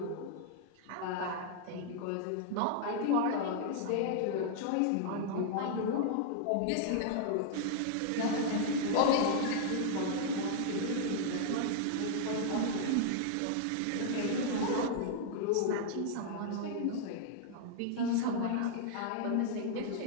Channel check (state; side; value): different; both; correlation -0.01